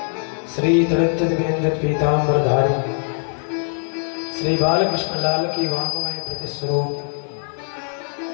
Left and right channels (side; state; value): right; silent; 65 dB below the other